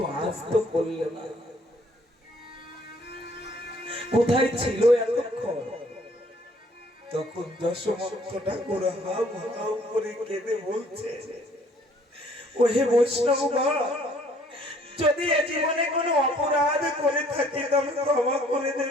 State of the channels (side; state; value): both; normal; correlation 0.61